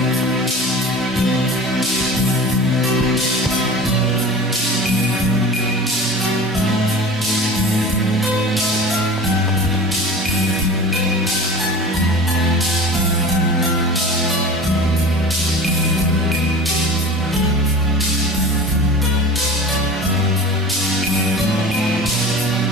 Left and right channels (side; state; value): both; normal; correlation 0.36